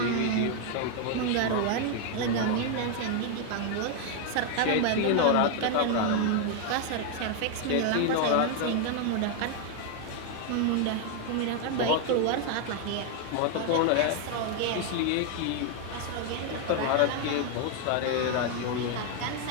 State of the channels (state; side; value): different; both; correlation 0.01